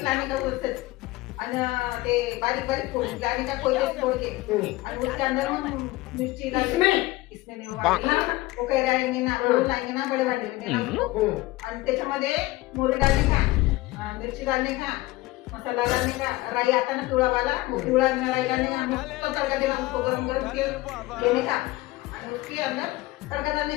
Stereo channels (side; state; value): right; quieter; 19.4 dB